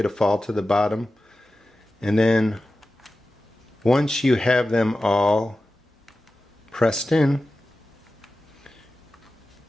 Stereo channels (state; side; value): normal; both; correlation 0.94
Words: to fall to the bottom. And then once you have them all pressed in,